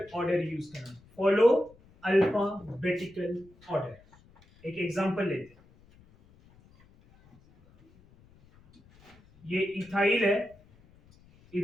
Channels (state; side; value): noise; left; rumble, 28 dB below the sound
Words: ऑर्डर यूज करना, फॉलो अल्फाबेटिकल ऑर्डर। एक एग्जांपल लेते हैं, ये इथाइल है,